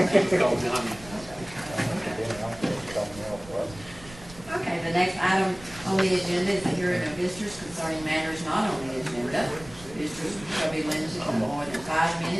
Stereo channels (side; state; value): right; noise; rumble, 19 dB below the sound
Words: Call Johnny. Okay, the next item on the agenda is the hearing of visitors concerning matters not on the agenda. Visitors shall be limited to no more than 5